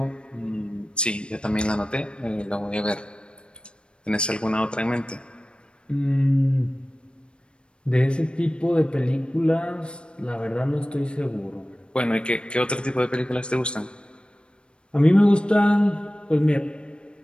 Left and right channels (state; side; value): late; right; 0.055 ms